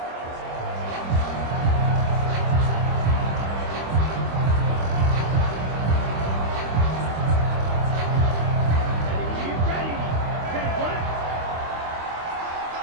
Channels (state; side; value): late; left; 25 ms